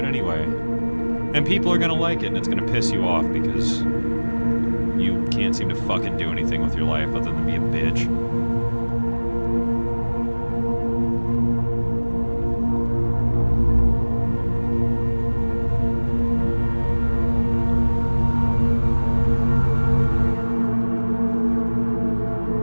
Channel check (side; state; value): both; inverted; correlation -1.00